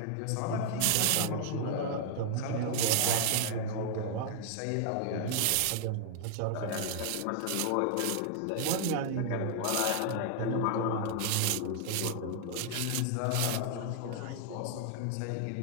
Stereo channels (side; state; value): both; different; correlation 0.00